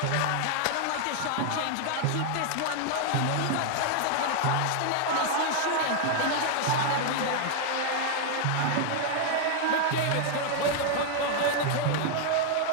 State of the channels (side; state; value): both; different; correlation 0.00